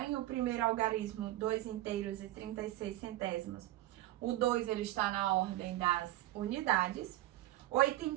o primeiro algarismo, 2 inteiros e 36 centésimos. O 2, ele está na ordem das unidades. 8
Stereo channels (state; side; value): quieter; left; 15.9 dB